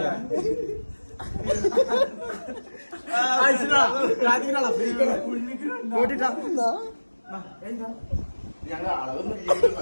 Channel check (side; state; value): both; inverted; correlation -1.00